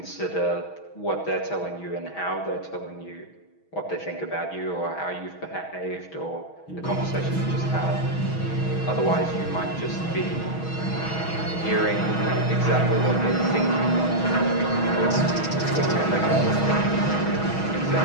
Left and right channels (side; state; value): right; late; 6.3 ms